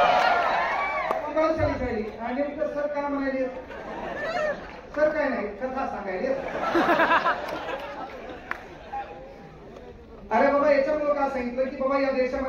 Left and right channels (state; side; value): identical; both; correlation 1.00